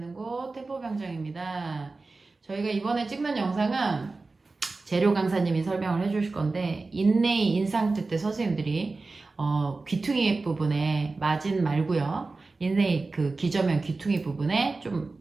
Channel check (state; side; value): quieter; left; 3.6 dB